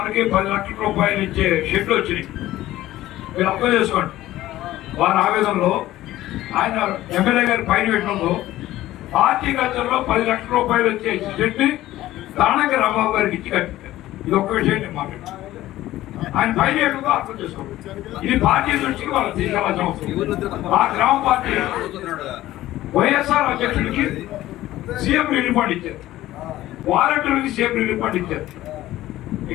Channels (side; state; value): right; quieter; 15.2 dB